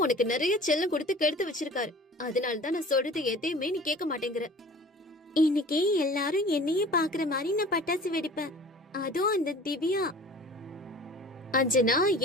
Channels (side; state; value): both; normal; correlation 0.44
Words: உனக்கு நிறைய செல்லம் கொடுத்து கெடுத்து வச்சிருக்காரு. அதனாலதான் நான் சொல்றது எதையுமே நீ கேட்க மாட்டேங்கிற. இன்னைக்கு எல்லாரும் என்னையே பாக்குற மாதிரி நான் பட்டாசு வெடிப்பேன், அதுவும் அந்த திவ்யா. அஞ்சனா,